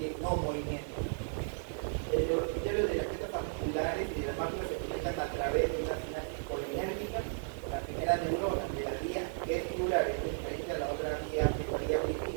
no movimiento. Los criterios de las piezas articulares y de las máquinas se conectan a través de una sinapsis colinérgica con la primera neurona de la vía vestibular, es diferente a la otra vía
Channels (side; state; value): left; silent; digital silence